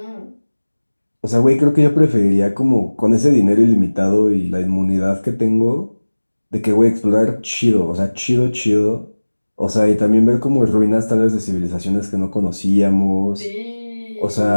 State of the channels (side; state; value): both; inverted; correlation -1.00